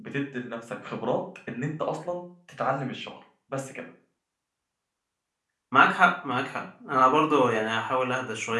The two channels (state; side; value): identical; both; correlation 1.00